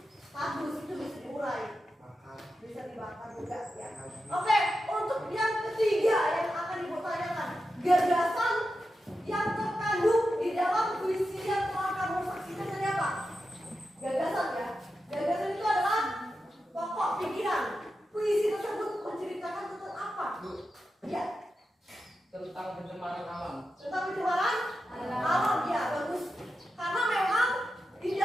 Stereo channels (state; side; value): normal; both; correlation 0.90